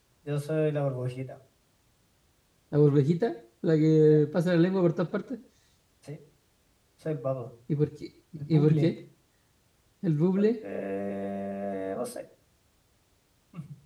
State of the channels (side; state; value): both; identical; correlation 1.00